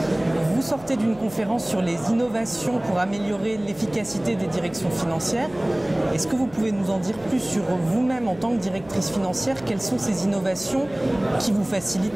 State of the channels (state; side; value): noise; left; hum, 22 dB below the sound